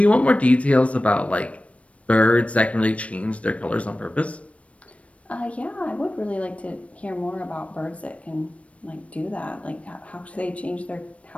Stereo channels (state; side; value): late; right; 0.064 ms